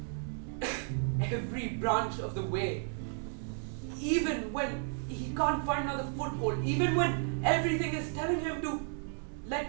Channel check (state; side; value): silent; left; 55 dB below the other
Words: every branch of the way. Even when he can't find another foothold, even when everything is telling him to let